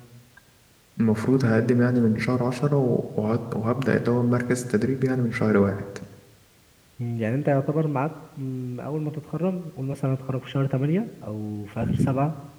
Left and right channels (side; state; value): both; identical; correlation 1.00